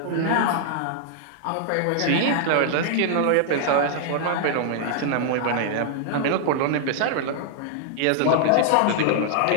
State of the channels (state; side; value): different; both; correlation -0.01